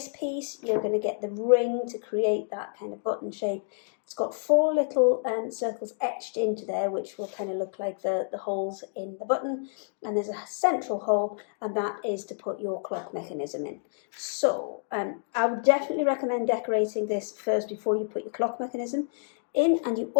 piece, you're going to get the ring to create that kind of button shape. It's got 4 little circles etched into there, which will kind of look like the holes in the button. And there's a central hole, and that is to put your clock mechanism in. So I would definitely recommend decorating this first before you put your clock mechanism in, and you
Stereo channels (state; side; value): silent; right; digital silence